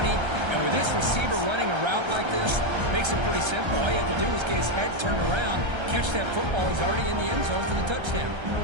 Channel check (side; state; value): left; late; 1.3 ms